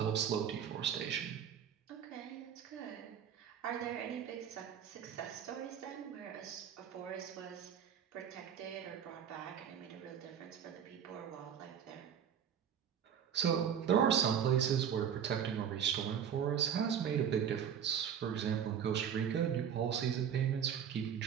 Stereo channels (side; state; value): left; quieter; 8.4 dB